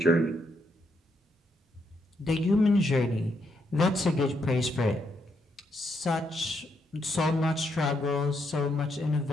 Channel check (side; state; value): both; normal; correlation 0.78